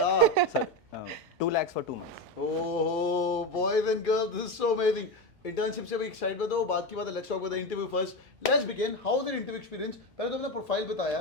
sir 2 lakhs for 2 months. Oh boys and girls, this is so amazing. Internship से भी एक साइड पे दो, बात की बात है. Let's talk about the interview first. Let's begin. How was your interview experience? पहले तो अपना प्रोफाइल बता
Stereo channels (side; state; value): both; normal; correlation 0.17